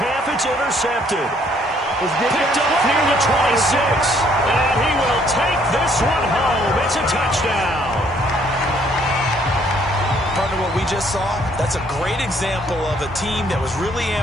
it's intercepted. Picked up near the 26. And he will take this one home. It's a touchdown. Partner, what we just saw, that's a great example of a team that was really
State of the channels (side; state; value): both; normal; correlation 0.65